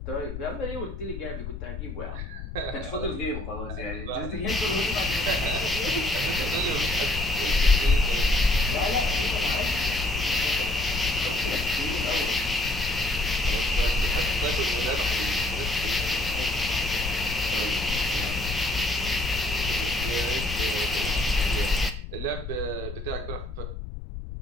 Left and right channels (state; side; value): noise; left; rumble, 8 dB below the sound